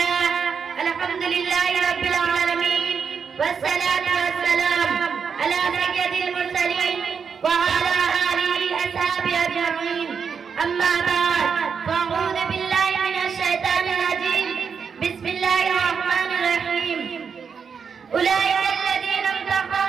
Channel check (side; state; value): left; quieter; 6.3 dB